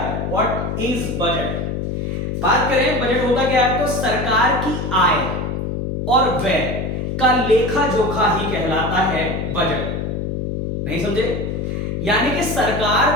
व्हाट इज बजट। बात करें बजट होता क्या है तो सरकार की आय और व्यय का लेखा जोखा ही कहलाता है बजट। नहीं समझे? यानी कि सरकार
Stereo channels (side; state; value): left; noise; hum, 3 dB below the sound